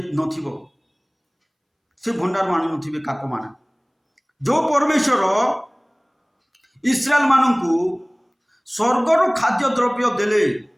नथिबो से भंडार आनी नथिबे काक माने जो परमेश्वर इस्राएल मानू स्वर्गर खाद्य द्रव्य देले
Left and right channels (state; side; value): identical; both; correlation 1.00